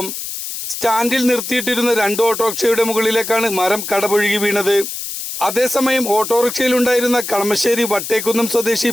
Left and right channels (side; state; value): left; noise; hiss, 7 dB below the sound